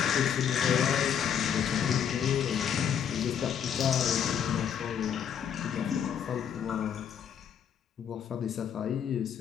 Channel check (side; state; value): right; quieter; 8.4 dB